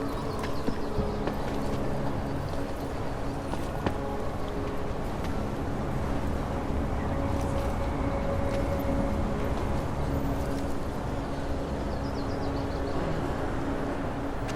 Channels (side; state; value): both; identical; correlation 1.00